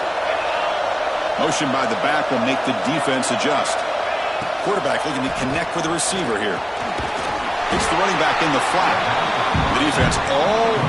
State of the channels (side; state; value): both; identical; correlation 1.00